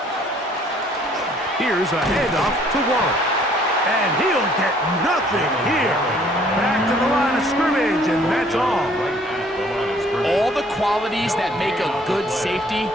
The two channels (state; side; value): normal; both; correlation 0.59